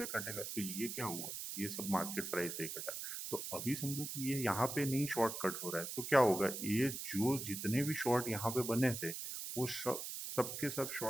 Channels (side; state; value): right; noise; hiss, 6 dB below the sound